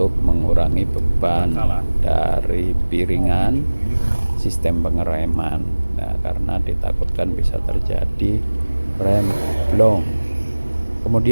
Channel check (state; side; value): inverted; both; correlation -1.00